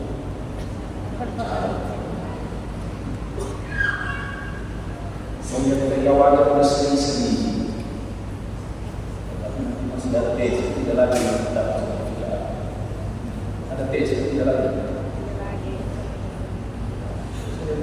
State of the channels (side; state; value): both; identical; correlation 1.00